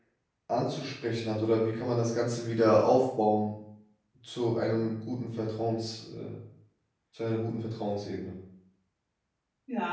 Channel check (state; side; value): identical; both; correlation 1.00